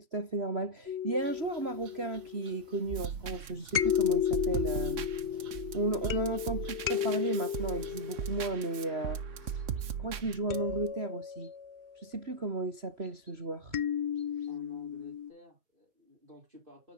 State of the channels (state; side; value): late; left; 3.6 ms